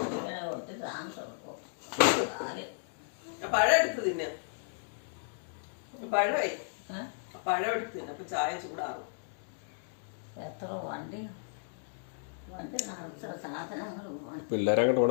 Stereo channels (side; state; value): right; silent; digital silence